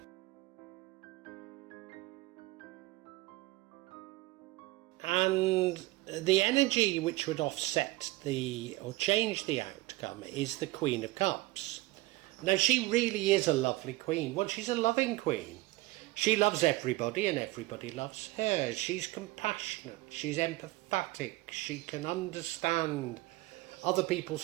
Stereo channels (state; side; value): quieter; left; 19.6 dB